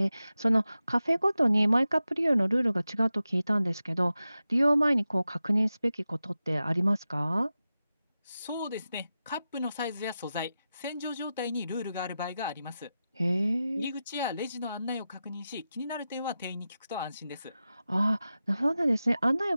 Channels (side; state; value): both; inverted; correlation -0.92